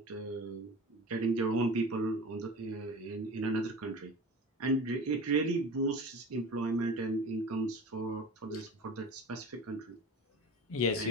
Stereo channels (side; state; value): both; normal; correlation 0.35